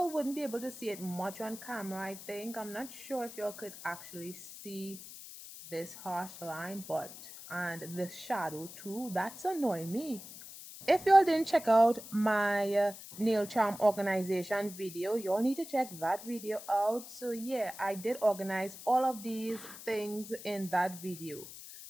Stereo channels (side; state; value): left; noise; hiss, 14 dB below the sound